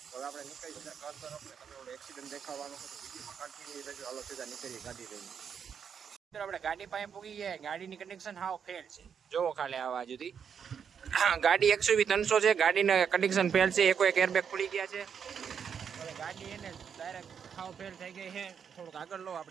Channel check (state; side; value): quieter; left; 7.3 dB